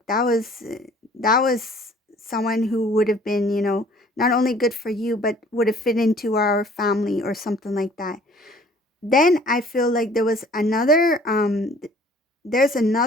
that was someone who would have been, not only good for you, but would have fit into our family or something like that. Then I feel like there's another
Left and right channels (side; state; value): both; normal; correlation 0.54